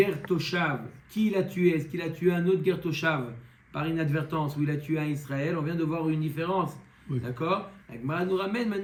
Toshav, qui il a tué? Est-ce qu'il a tué un autre Ger Toshav par inadvertance ou il a tué un Israël? On vient de voir une différence. Oui. D'accord? La Gemara nous ramène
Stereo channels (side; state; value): both; identical; correlation 1.00